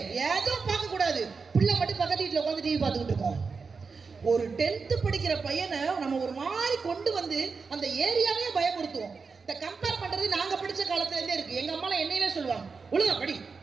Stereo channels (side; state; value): left; quieter; 4.9 dB